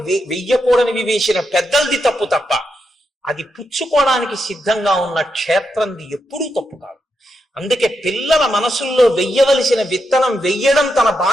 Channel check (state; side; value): normal; both; correlation 0.84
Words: వేసిన పెద్దలది తప్పు తప్ప అది పుచ్చుకోవడానికి సిద్ధంగా ఉన్న క్షేత్రంది ఎప్పుడూ తప్పు కాదు. అందుకే పిల్లల మనసుల్లో వెయ్యవలసిన విత్తనం వెయ్యడం తన